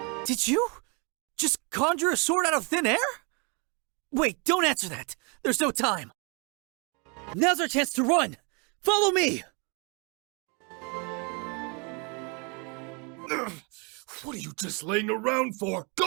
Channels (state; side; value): quieter; left; 33.3 dB